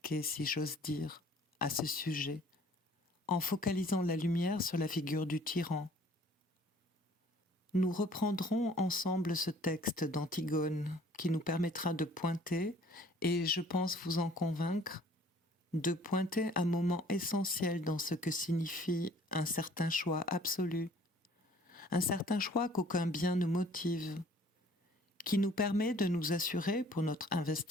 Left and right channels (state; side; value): normal; both; correlation 0.54